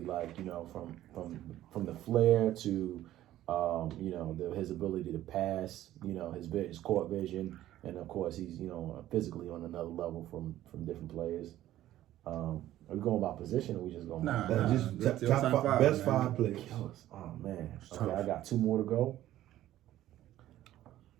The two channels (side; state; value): left; quieter; 13.7 dB